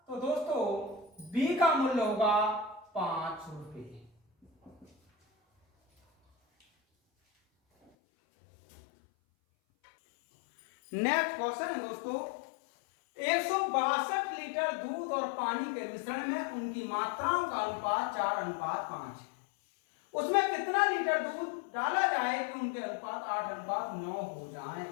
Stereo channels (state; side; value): drops out; right; at 7.9 s